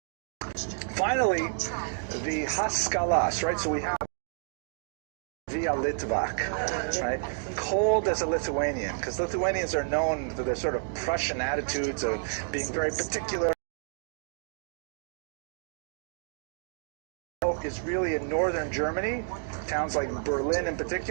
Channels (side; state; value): left; silent; digital silence